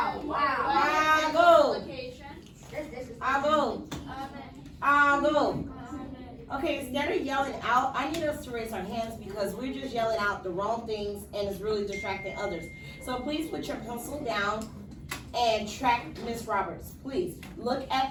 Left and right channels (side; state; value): both; identical; correlation 1.00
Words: Wow. I'll go. Okay, instead of yelling out, I need us to raise our hands because we're just yelling out the wrong things and it's really distracting others. So please put your pencil down and track Miss Roberts. Please look